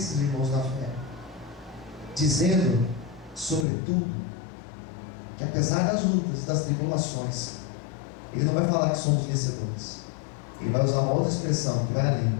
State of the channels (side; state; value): right; drops out; at 3.7 s